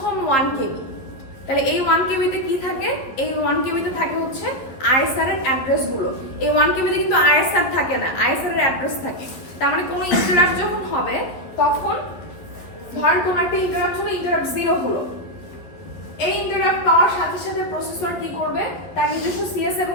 1 কেবি। তাহলে এই 1 কেবিতে কি থাকে? এই 1 কেবিতে থাকে হচ্ছে আইএসআর এর অ্যাড্রেস গুলো। এই 1 কেবিতে কিন্তু আইএসআর থাকে না, আইএসআর এর অ্যাড্রেস থাকে। তার মানে কোনো ইন্টারাপ্ট যখন হবে তখন ধরেন কোন একটা ইন্টারাপ্ট হলো, ইন্টারাপ্ট 0 হলো, এই ইন্টারাপ্ট পাওয়ার সাথে সাথে প্রসেসর কি করবে? তার নিজস্ব সিএস এবং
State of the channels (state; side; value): late; right; 11 ms